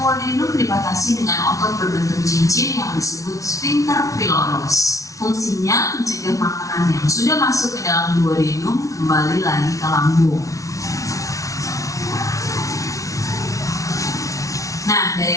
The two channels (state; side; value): late; right; 0.16 ms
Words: dibatasi dengan otot berbentuk cincin yang disebut sphincter pylorus. Fungsinya mencegah makanan yang sudah masuk ke dalam duodenum kembali lagi ke lambung. Nah,